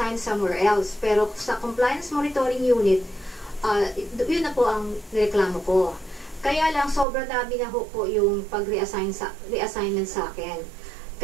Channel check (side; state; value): left; drops out; at 7.1 s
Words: somewhere else, pero sa Compliance Monitoring Unit, yun na po ang reklamo ko. Kaya lang, sobrang dami na po yung pag-reassignment sa akin.